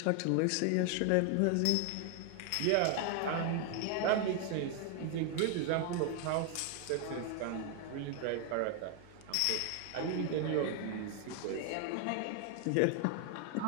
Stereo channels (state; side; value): different; both; correlation 0.00